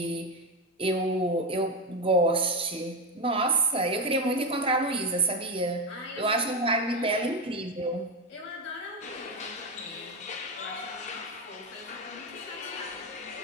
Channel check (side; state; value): both; normal; correlation 0.13